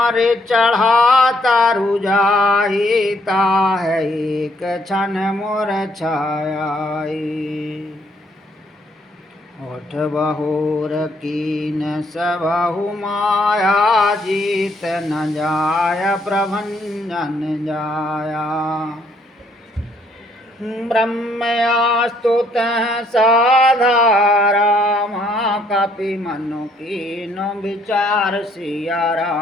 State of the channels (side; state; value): both; normal; correlation 0.68